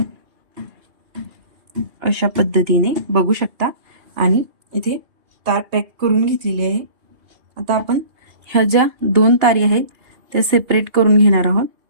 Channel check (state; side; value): late; left; 2.8 ms